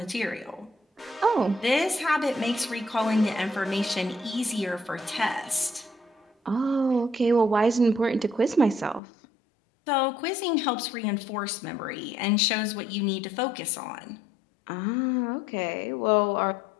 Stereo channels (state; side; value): drops out; right; at 9.0 s